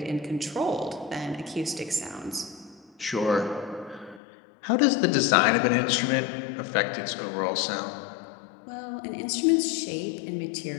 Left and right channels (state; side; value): drops out; right; at 4.2 s